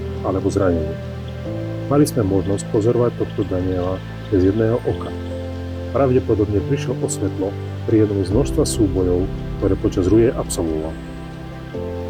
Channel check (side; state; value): both; identical; correlation 1.00